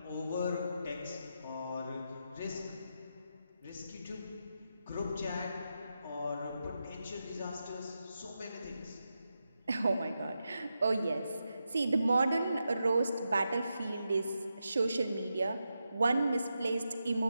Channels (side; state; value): both; inverted; correlation -0.87